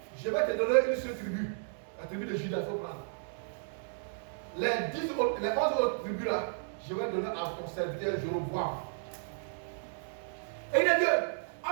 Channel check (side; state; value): left; silent; digital silence